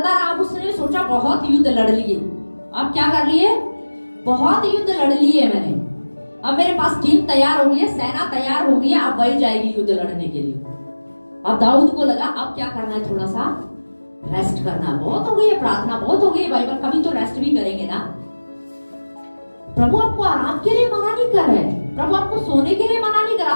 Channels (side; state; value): both; inverted; correlation -1.00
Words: रहा। अब उसने सोचा बहुत युद्ध लड़ लिए, अब क्या कर लिए? बहुत युद्ध लड़ लिए मैंने, अब मेरे पास टीम तैयार हो गई है, सेना तैयार हो गई है, अब वही जाएगी युद्ध लड़ने के लिए। अब दाऊद को लगा अब क्या करना है? थोड़ा सा रेस्ट करना। बहुत हो गई है प्रार्थना, बहुत हो गई है बाइबल, कभी तो रेस्ट भी करेंगे ना। प्रभु आपको आराम के लिए मना नहीं कर रहे हैं, प्रभु आपको सोने के लिए मना नहीं कर रहा,